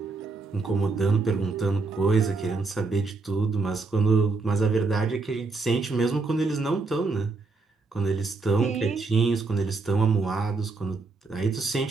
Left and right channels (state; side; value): quieter; left; 4.0 dB